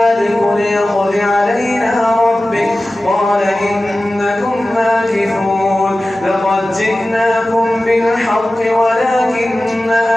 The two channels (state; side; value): normal; both; correlation 0.96